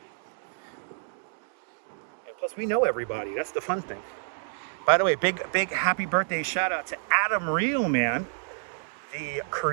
And plus, we know everybody. That's the fun thing. By the way, big happy birthday shout out to Adam Reelman, the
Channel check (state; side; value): silent; left; digital silence